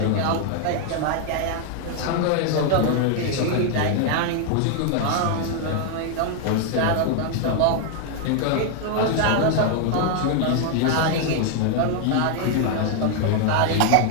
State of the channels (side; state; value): both; different; correlation 0.00